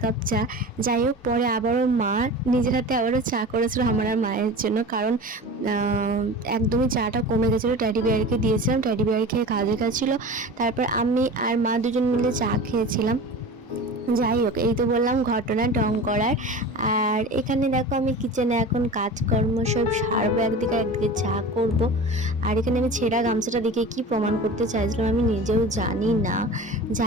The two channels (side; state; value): both; normal; correlation 0.35